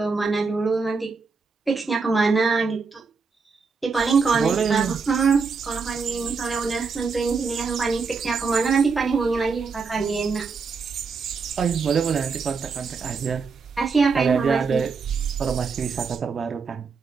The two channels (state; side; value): quieter; left; 4.9 dB